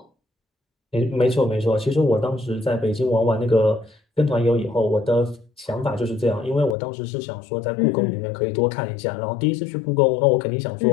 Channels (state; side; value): drops out; right; at 6.8 s